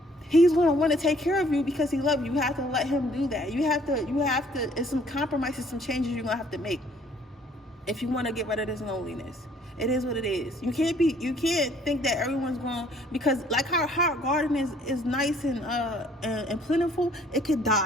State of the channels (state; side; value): normal; both; correlation 0.60